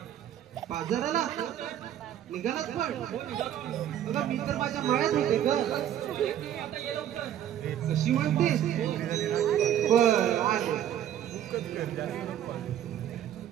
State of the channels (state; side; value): quieter; left; 10.8 dB